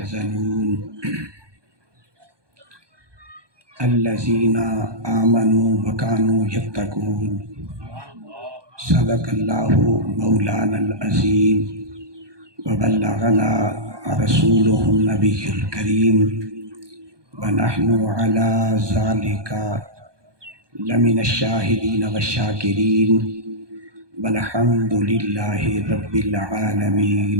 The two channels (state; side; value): late; left; 1.2 ms